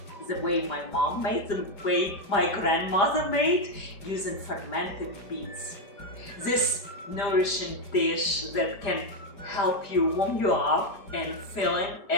the way my mom made, the way my grandmother made, using fermented beets. This nourishing dish that can help you warm you up and filling,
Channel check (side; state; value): right; late; 5.0 ms